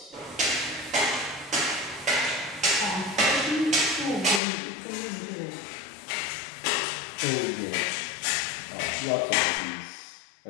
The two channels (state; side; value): drops out; right; at 4.4 s